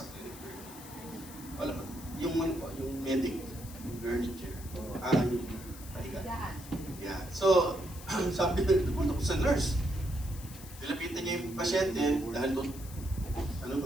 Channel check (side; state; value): left; noise; hiss, 16 dB below the sound